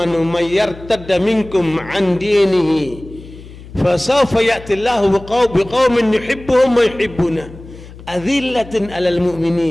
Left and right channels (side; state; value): left; noise; hum, 17 dB below the sound